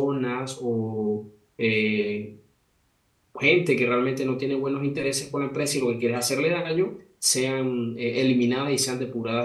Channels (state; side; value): identical; both; correlation 1.00